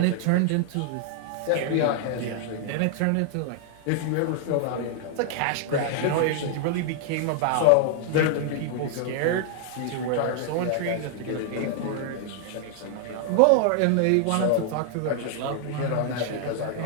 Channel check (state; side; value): different; both; correlation 0.00